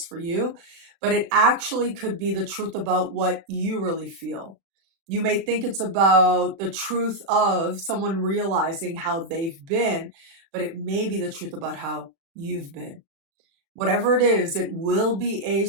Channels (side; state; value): left; late; 36 ms